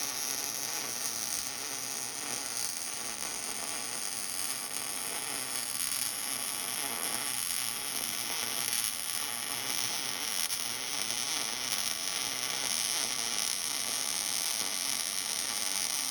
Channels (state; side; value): identical; both; correlation 1.00